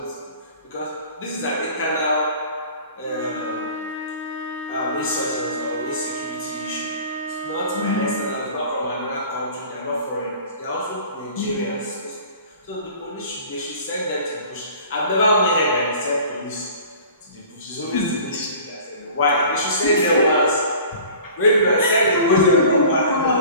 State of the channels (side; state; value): both; inverted; correlation -0.44